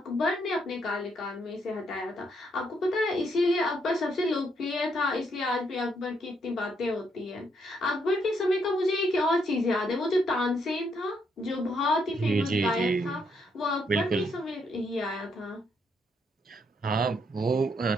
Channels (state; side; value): normal; both; correlation 0.74